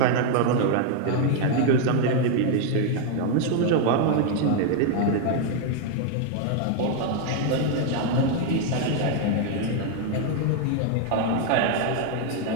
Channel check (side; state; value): both; different; correlation 0.00